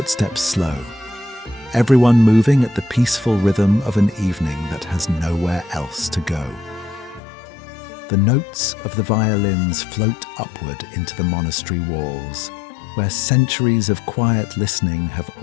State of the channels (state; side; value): drops out; right; at 7.2 s